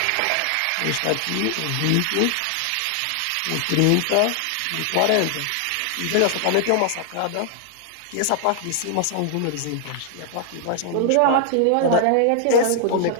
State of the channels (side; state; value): both; different; correlation 0.00